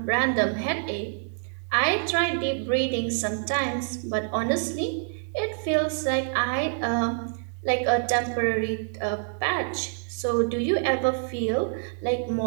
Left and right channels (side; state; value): left; silent; digital silence